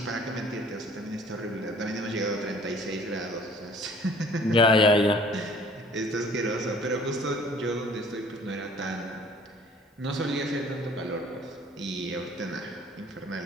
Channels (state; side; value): normal; both; correlation 0.53